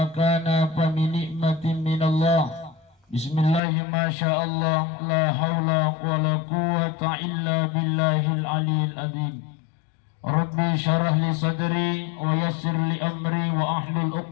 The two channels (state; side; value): drops out; right; at 3.6 s